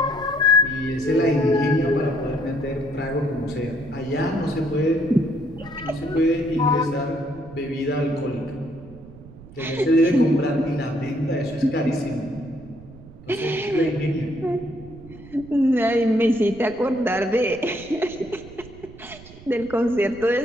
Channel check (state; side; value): noise; right; rumble, 19 dB below the sound